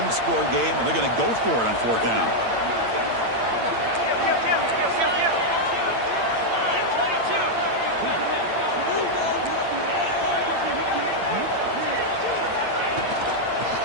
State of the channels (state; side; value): late; left; 8.8 ms